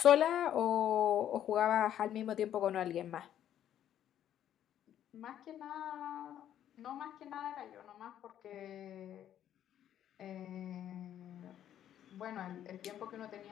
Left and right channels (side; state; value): right; quieter; 10.8 dB